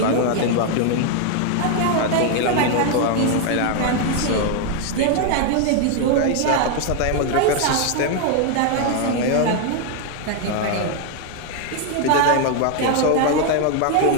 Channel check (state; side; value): different; both; correlation 0.00